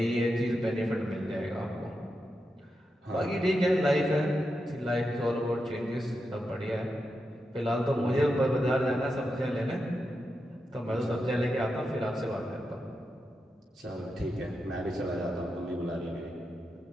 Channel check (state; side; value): normal; both; correlation 0.87